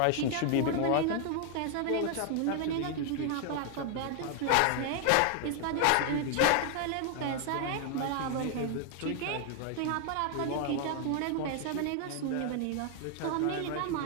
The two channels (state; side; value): different; both; correlation 0.00